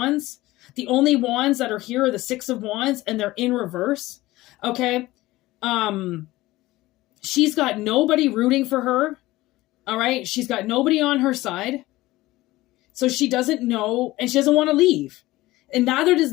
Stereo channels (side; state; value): right; quieter; 18.2 dB